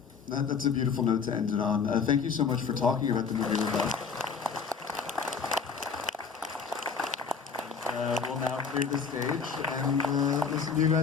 That's a beautiful note to end it on. Thank you so much for talking about the movie with us. We'll now clear the stage and listen to you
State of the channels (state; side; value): quieter; right; 5.6 dB